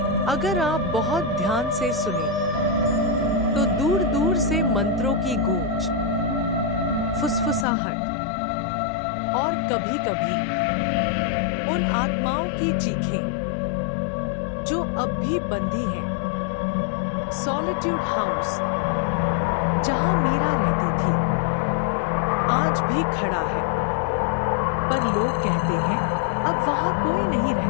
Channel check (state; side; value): drops out; right; at 7.7 s